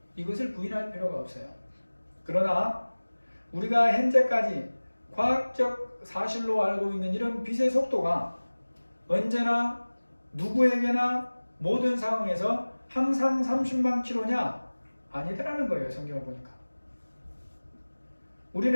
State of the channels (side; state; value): both; inverted; correlation -1.00